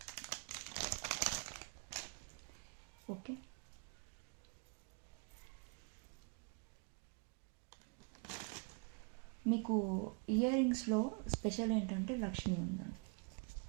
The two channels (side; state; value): left; quieter; 36.0 dB